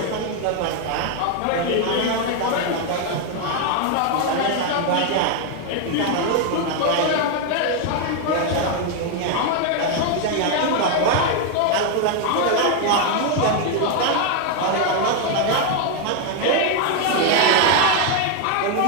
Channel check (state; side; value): different; both; correlation 0.01